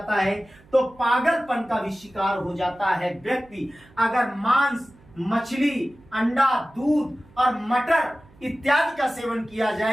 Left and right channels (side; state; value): right; noise; hum, 27 dB below the sound